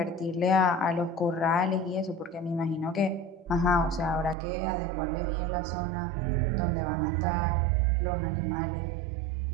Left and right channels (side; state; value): left; drops out; at 4.4 s